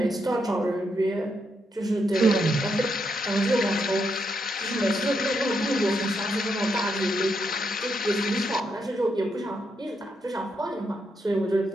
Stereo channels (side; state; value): both; normal; correlation 0.80